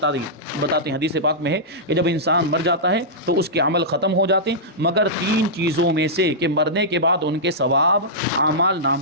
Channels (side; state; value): both; normal; correlation -0.13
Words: ہیں، حدیث پاک میں ہے کہ جب انسان مر جاتا ہے تو اس کے عمل ختم ہو جاتے ہیں، مگر 3 چیزوں میں سے کہ مرنے کے بعد ان کے ثواب اعمال